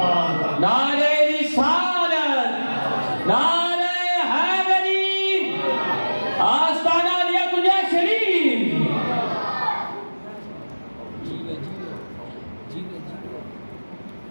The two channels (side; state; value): both; inverted; correlation -1.00